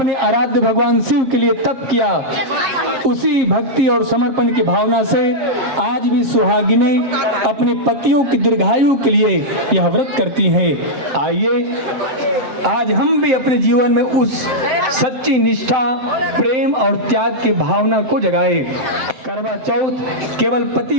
आराध्य भगवान शिव के लिए तप किया, उसी भक्ति और समर्पण की भावना से आज भी सुहागिनें अपने पतियों की दीर्घायु के लिए यह व्रत करती हैं। आइए आज हम भी अपने जीवन में उस सच्ची निष्ठा, प्रेम और त्याग की भावना को जगाएं। करवा चौथ केवल पति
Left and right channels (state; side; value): late; left; 7.5 ms